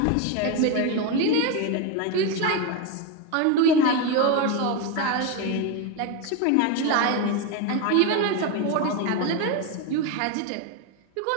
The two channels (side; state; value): both; different; correlation 0.03